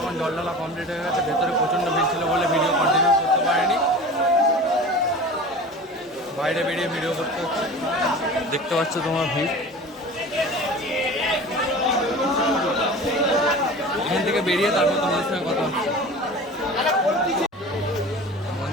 জল ঢালা কমপ্লিট হয়ে গেছে। ভেতরে প্রচণ্ড ভিড় ছিল বলে ভিডিও কন্টিনিউ করতে পারিনি, বাইরে বেরিয়ে ভিডিও করতে হচ্ছে। দেখতে পাচ্ছ তোমার ভিড়। এখান থেকে বেরিয়ে তারপর তোমাদের সঙ্গে কথা হচ্ছে।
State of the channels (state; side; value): normal; both; correlation 0.37